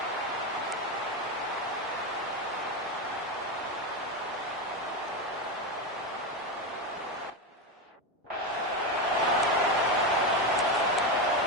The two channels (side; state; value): both; normal; correlation 0.13